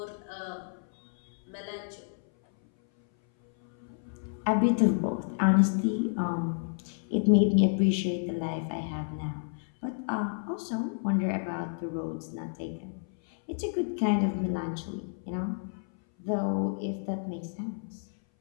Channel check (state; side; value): silent; right; 58 dB below the other